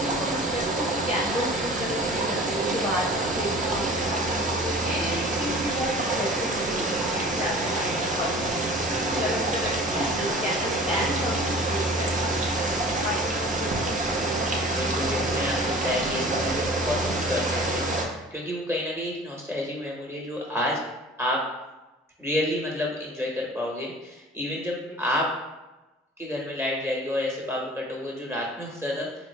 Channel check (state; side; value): normal; both; correlation 0.43